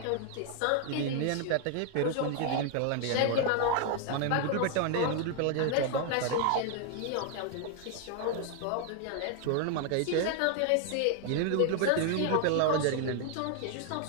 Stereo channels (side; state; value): both; different; correlation 0.00